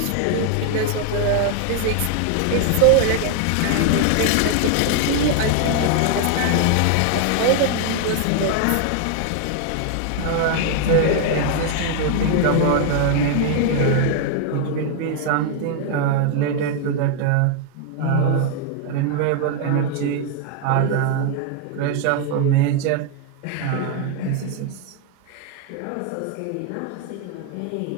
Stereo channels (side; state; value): both; different; correlation 0.00